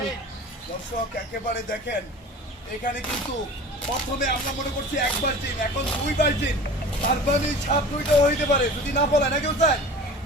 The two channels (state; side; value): normal; both; correlation 0.39